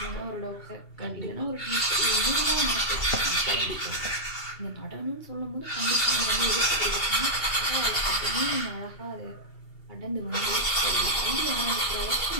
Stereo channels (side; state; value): right; late; 2.7 ms